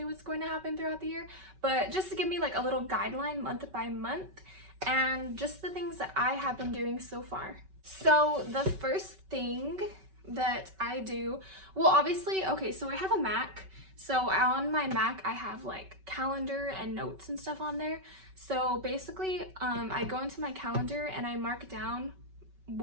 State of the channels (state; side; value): late; left; 5.3 ms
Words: what's going to happen throughout the year, but just to give me like a little guideline month by month and just the things that I have been doing so far. So the first thing that I do, well obviously, okay, so I have a Mac. So on my Mac, I have like calendar and notes and stuff on there. So basically, I go into my calendar and I mark down